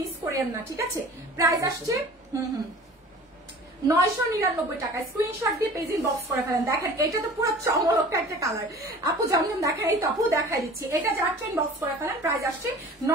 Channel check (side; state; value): both; normal; correlation 0.43